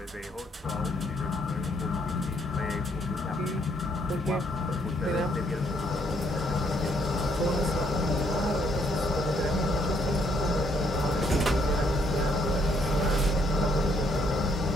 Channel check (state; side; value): normal; both; correlation 0.70